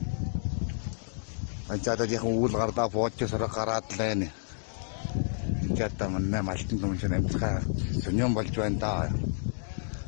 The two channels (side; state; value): right; silent; digital silence